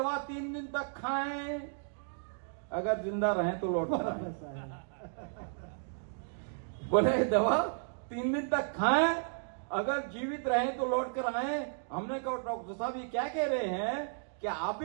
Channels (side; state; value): left; silent; digital silence